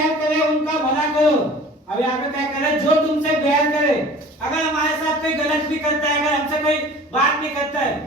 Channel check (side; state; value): both; normal; correlation 0.44